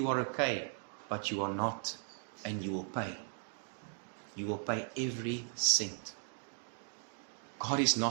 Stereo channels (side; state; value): left; silent; 53 dB below the other